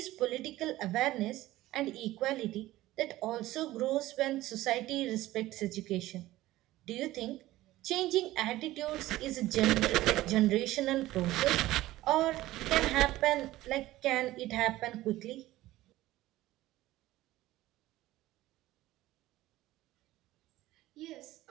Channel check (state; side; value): quieter; left; 16.4 dB